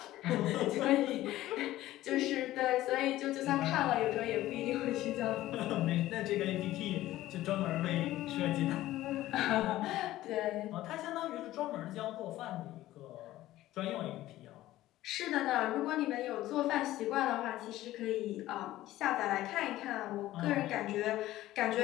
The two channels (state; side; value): quieter; right; 15.3 dB